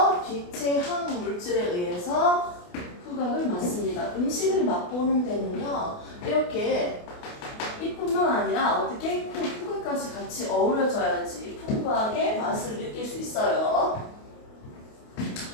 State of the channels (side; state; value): right; late; 28 ms